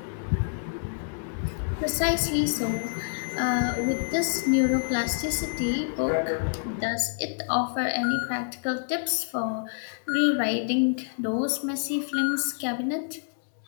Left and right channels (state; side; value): silent; right; digital silence